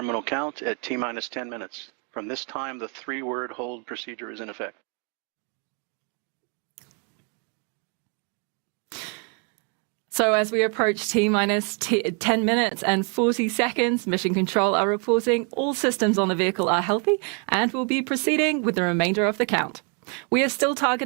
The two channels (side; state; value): left; quieter; 37.9 dB